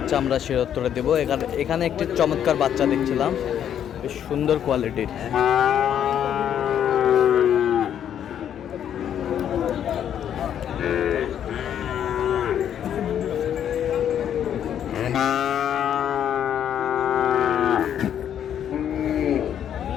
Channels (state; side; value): quieter; right; 9.6 dB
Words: আমরা সে উত্তরে দেবো। এখানে একটি চমৎকার বাচ্চা দেখছিলাম, বেশ সুন্দর কোয়ালিটির।